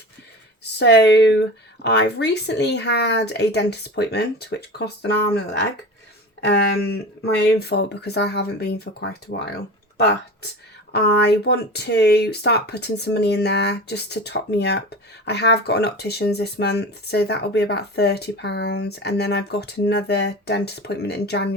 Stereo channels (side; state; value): both; normal; correlation 0.32